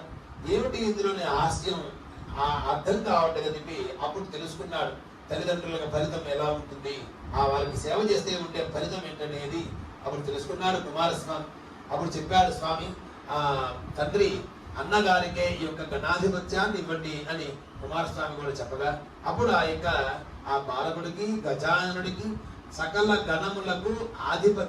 ఏమిటి ఇందులోని హాస్యం అర్థం కావట్లేదు చెప్పి అప్పుడు తెలుసుకున్నాడు. తల్లిదండ్రులకు ఫలితం ఎలా ఉంటుంది, ఆ వాళ్ళకి సేవ చేస్తే ఉండే ఫలితం ఏంటనేది అప్పుడు తెలుసుకున్నాడు కుమారస్వామి. అప్పుడు చెప్పాడు స్వామి, తండ్రి అన్నగారికే ఈ యొక్క గణాధిపత్యాన్ని ఇవ్వండి అని కుమారస్వామి కూడా చెప్పగా, అప్పుడు ఆ బాలకుడికి గజాననుడికి సకల గణములకు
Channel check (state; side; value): identical; both; correlation 1.00